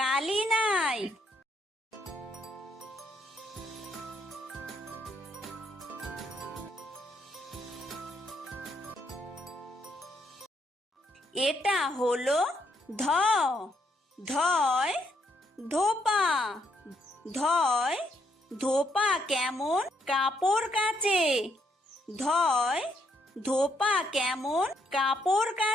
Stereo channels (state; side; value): normal; both; correlation 0.73